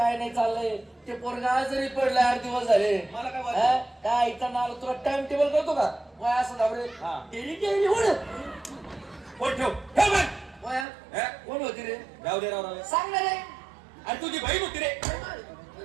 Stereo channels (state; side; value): drops out; left; at 10.9 s